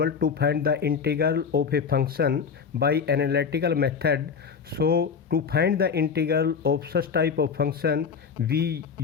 to find the integral of a function by analytical method. So to find the integral of such type of function, we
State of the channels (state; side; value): quieter; right; 6.1 dB